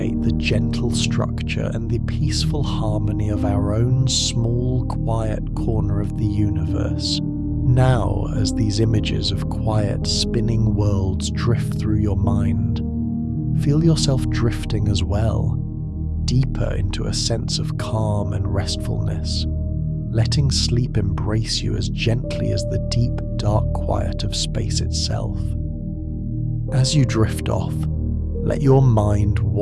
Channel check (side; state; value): both; identical; correlation 1.00